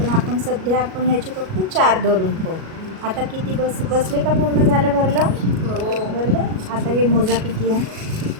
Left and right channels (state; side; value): late; left; 37 ms